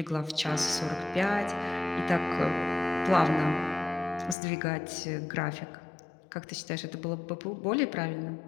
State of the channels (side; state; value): right; drops out; at 4.4 s